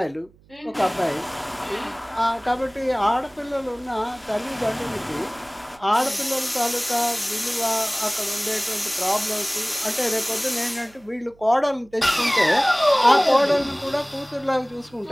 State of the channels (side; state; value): right; noise; hum, 29 dB below the sound